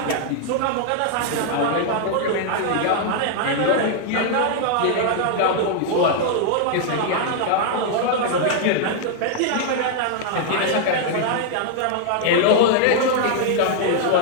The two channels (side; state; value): both; different; correlation 0.00